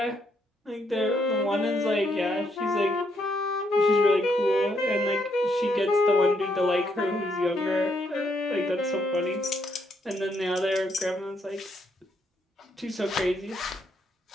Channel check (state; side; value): normal; both; correlation 0.75